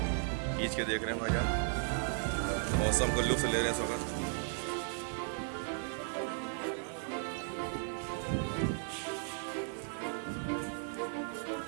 खींच के देख रहे हैं भाईजान, मौसम को लुत्फ ले रहे हैं इस वक्त।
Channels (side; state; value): left; silent; 54 dB below the other